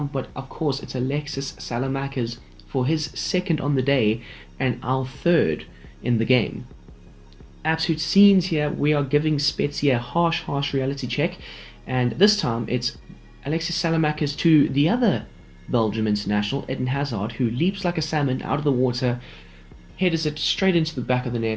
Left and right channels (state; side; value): identical; both; correlation 1.00